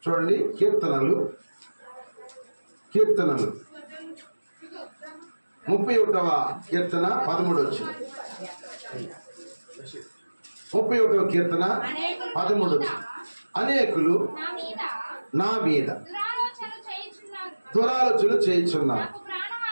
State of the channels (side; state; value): both; inverted; correlation -1.00